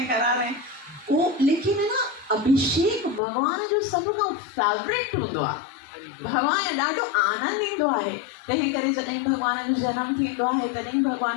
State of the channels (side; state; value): right; drops out; at 3.2 s